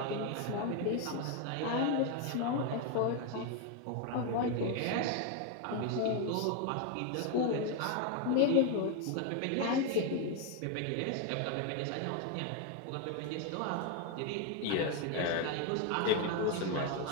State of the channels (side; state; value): both; different; correlation 0.01